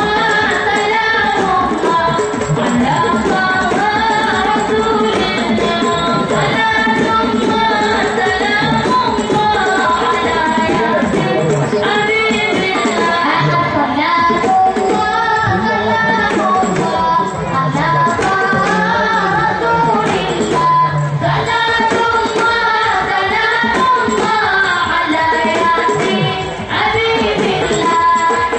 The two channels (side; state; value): both; identical; correlation 1.00